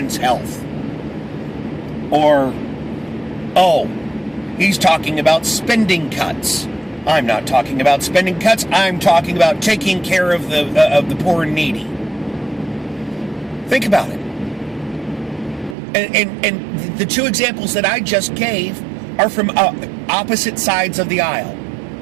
health. Or, he's talking about spending cuts. I'm not talking about spending cuts. I'm talking about taking care of the poor and needy. Think about it. And the two examples that I just gave are from opposite sides of the aisle.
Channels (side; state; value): left; drops out; at 15.8 s